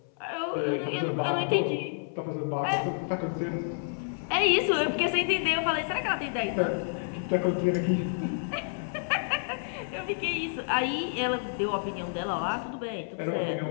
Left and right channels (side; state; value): right; silent; 58 dB below the other